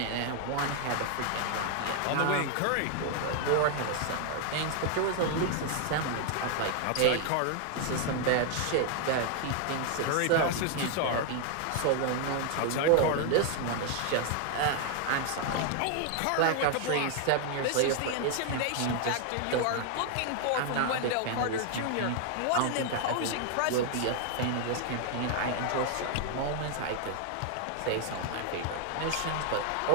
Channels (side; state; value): both; different; correlation 0.00